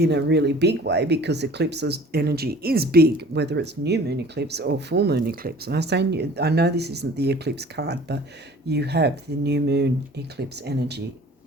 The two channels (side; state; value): both; normal; correlation 0.47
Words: a really big way, because eclipse's energy is big, whether it's new moon eclipse or full moon eclipse. And I know this isn't the eclipse card, but you have the new moon eclipse energy